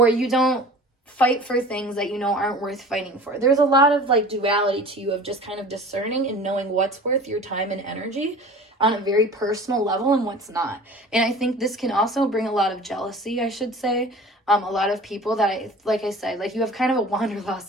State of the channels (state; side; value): normal; both; correlation 0.42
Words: you don't fight for things that you know aren't worth fighting for. There's a lot of like duality to you of just kind of discerning and knowing what's worth your time and energy on a very personal level and what's not. And I think this can also bring a lot of jealousy, I should say. A lot of people that like I said, like you have kind of a